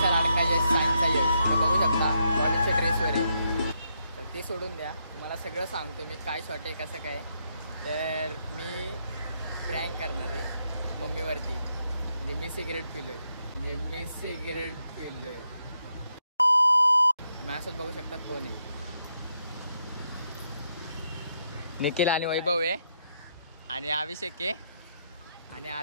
लाडका यश सायन्सचा यश. तर बघू शकता कॉलेजच्या ड्रेसवर आहे. तर ते सोडून द्या, मला सगळं सांगतो मी काय शॉर्ट आहे कसं काय. तर मी प्रँक करणार आहे मम्मीवरती. म्हणजे मी सिगरेट पिलोय. माझ्यासोबत बघू शकता कोण आहे. निखिल आणि वैभव आहे आणि अभिषेक आहे आणि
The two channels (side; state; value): both; inverted; correlation -0.79